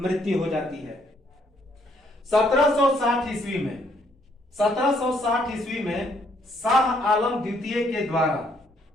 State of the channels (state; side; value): normal; both; correlation 0.69